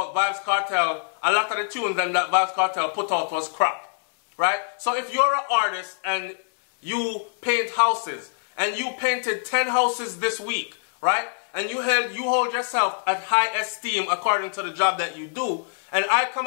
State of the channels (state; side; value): silent; right; 62 dB below the other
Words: Vybz Kartel, a lot of the tunes that Vybz Kartel put out was crap. Right? So if you're an artist and you paint houses, and you painted 10 houses this week, right? And you hold yourself at high esteem according to the job that you do, and I come